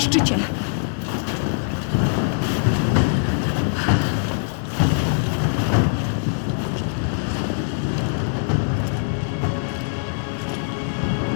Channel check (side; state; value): right; silent; digital silence